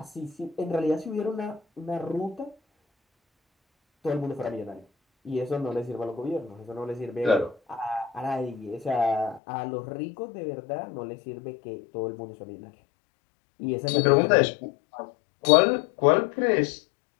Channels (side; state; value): right; drops out; at 9.4 s